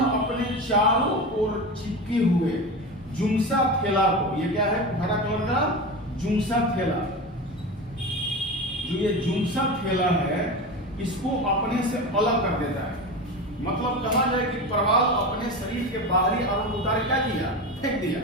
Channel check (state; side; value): normal; both; correlation 0.25